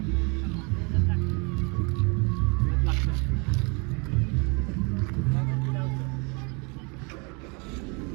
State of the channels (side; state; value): left; quieter; 31.7 dB